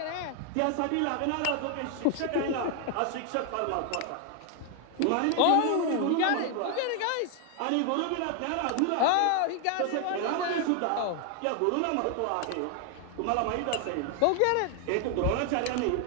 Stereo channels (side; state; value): both; different; correlation 0.00